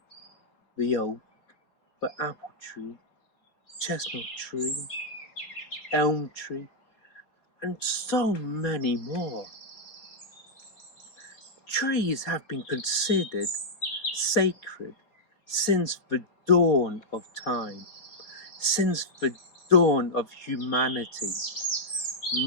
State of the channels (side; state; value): right; late; 4.4 ms